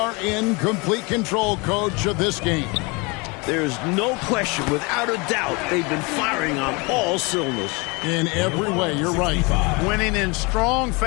in complete control, coach, of this game. There's no question, without a doubt, they've been firing on all cylinders. In every way, you're right. Winning in strong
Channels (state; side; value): quieter; right; 28.1 dB